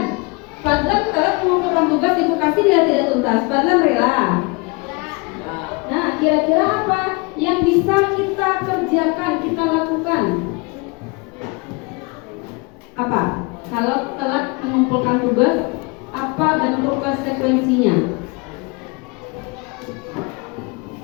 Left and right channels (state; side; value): quieter; right; 28.4 dB